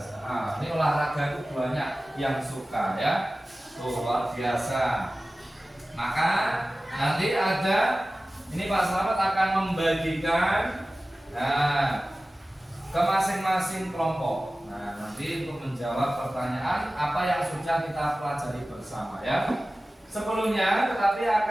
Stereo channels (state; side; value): normal; both; correlation 0.96